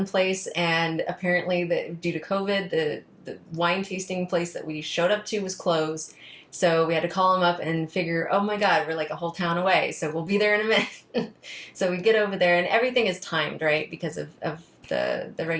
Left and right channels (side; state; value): both; identical; correlation 1.00